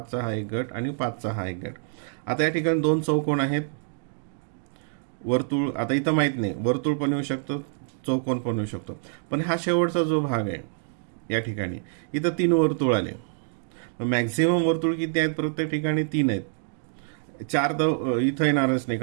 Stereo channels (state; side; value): silent; left; digital silence